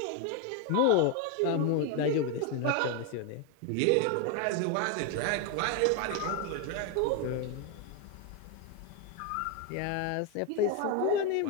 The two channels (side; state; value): both; different; correlation 0.01